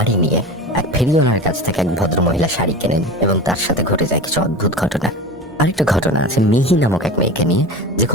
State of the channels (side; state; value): both; normal; correlation 0.31